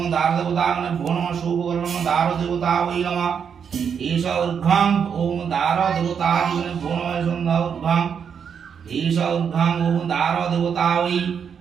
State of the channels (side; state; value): left; quieter; 7.2 dB